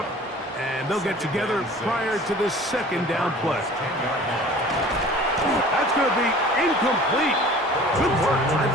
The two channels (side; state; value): both; normal; correlation 0.45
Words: and they'll get together prior to the 2nd down play. That's going to be incomplete. Good work by